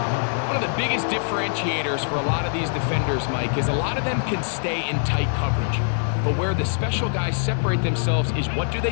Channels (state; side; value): silent; right; digital silence